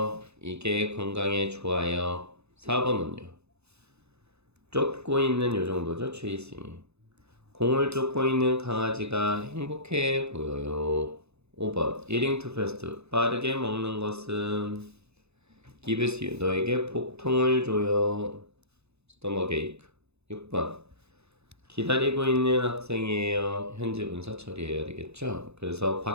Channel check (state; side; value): late; left; 0.80 ms